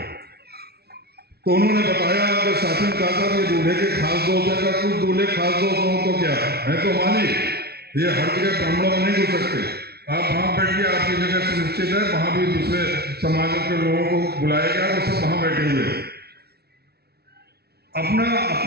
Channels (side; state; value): left; late; 0.46 ms